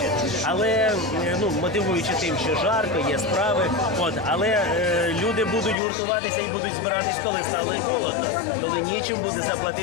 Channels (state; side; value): drops out; right; at 5.8 s